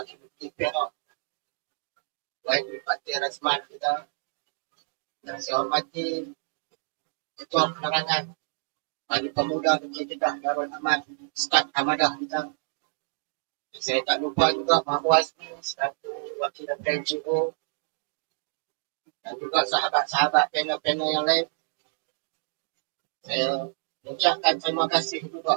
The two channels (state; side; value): silent; left; digital silence